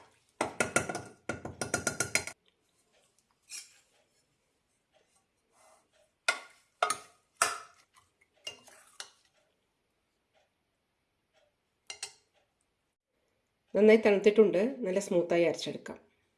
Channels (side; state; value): both; identical; correlation 1.00